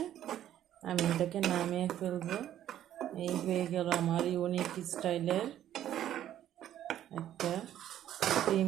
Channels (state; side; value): quieter; left; 11.6 dB